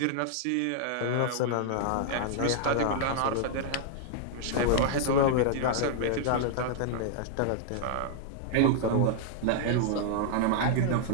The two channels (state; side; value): different; both; correlation -0.01